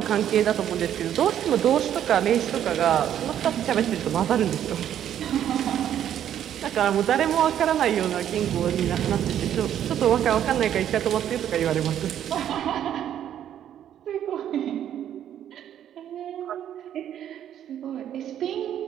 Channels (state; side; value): quieter; left; 10.4 dB